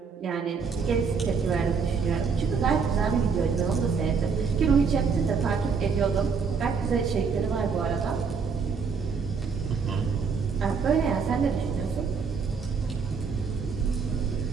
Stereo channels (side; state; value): left; quieter; 5.5 dB